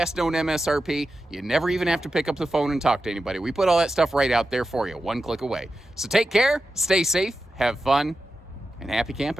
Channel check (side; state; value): both; normal; correlation 0.91